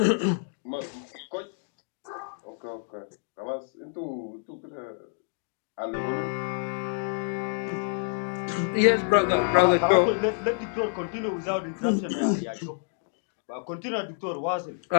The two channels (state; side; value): silent; right; digital silence